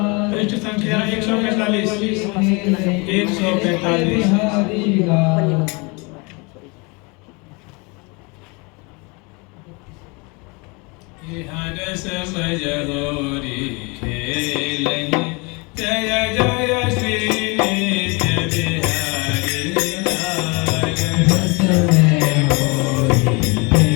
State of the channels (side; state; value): right; quieter; 29.0 dB